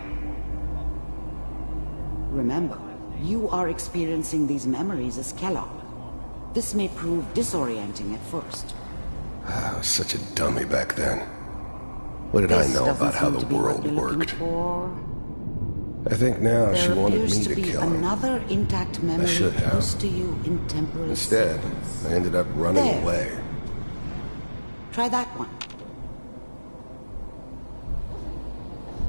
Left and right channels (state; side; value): inverted; both; correlation -1.00